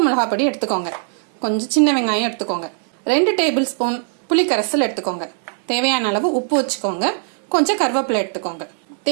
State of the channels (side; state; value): left; silent; digital silence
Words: மிளகாய் பொடி எடுத்துக்கோங்க. கொஞ்சம் சின்ன வெங்காயம் எடுத்துக்கோங்க. 2 டேபிள் ஸ்பூன் புளிக்கரைசல் எடுத்துக்கோங்க. தேவையான அளவு உப்பு வச்சுக்கோங்க. கொஞ்சம் கருவேப்பிலை எடுத்துக்கோங்க.